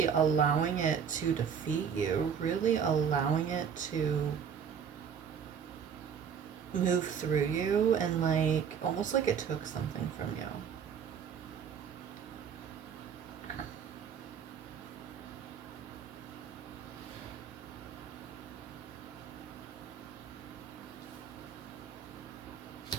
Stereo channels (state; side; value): quieter; left; 7.4 dB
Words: allowing it to defeat you, really allowing it to move through you, and almost like it took something from you.